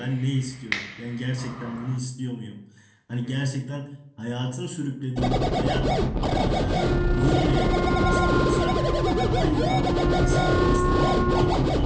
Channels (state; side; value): identical; both; correlation 1.00